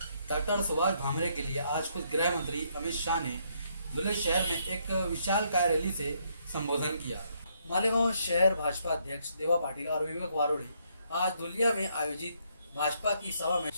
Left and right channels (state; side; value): inverted; both; correlation -0.72